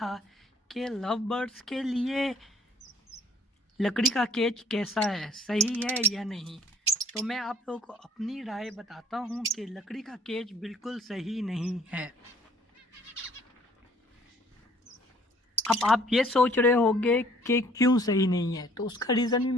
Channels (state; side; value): normal; both; correlation 0.57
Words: कि लव बर्ड्स के लिए लकड़ी का केज कैसा है, सही है या नहीं, तो मैं आप लोगों को अपनी राय बताता हूँ कि लकड़ी का केज बिल्कुल सही नहीं है। अब आप ये सोच रहे होंगे कि क्यों सही नहीं है, तो उसका रीज़न भी